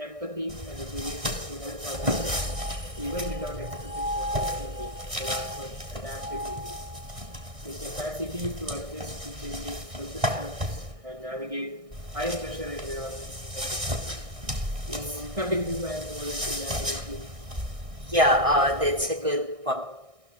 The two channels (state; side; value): late; left; 1.6 ms